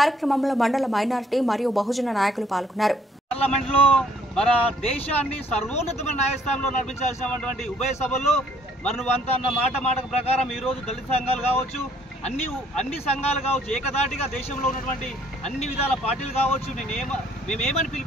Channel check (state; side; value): normal; both; correlation 0.63